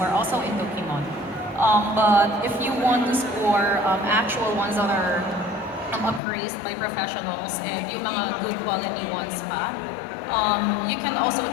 also into kimono. But if you want to score actual ones that are appraised by professionals and yung mga good quality ones pa, you can also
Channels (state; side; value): drops out; right; at 6.2 s